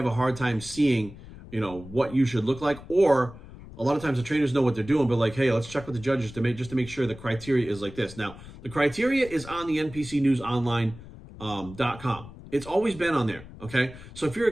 a hard time seeing, what you should look like. Or a lot of times the trainers know what they're doing, but like, hey, let's check with the judges to make sure the criteria is like this. Now, the criteria is on the NPCNewsOnline.com. It's always been on there, okay? So if you're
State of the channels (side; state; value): left; noise; rumble, 16 dB below the sound